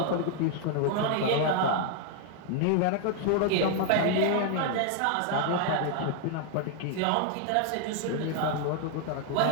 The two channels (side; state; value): both; different; correlation 0.00